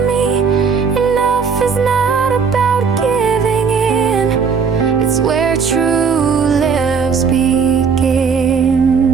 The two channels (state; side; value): quieter; left; 5.9 dB